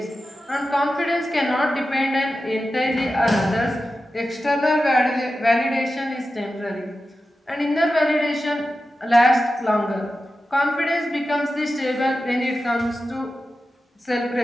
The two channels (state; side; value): normal; both; correlation 0.92